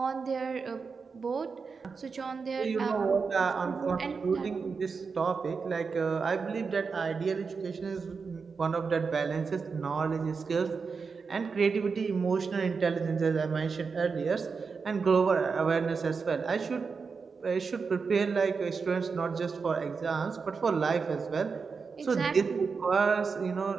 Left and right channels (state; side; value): quieter; left; 5.1 dB